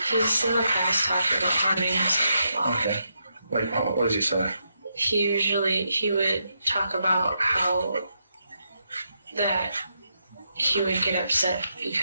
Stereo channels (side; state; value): both; inverted; correlation -0.81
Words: He's in the past talked about harming himself a lot. Okay. Like, what does he say? He would talk about how that he would get upset